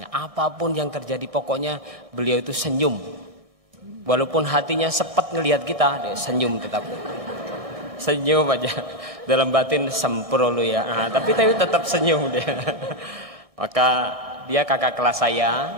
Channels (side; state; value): left; late; 1.3 ms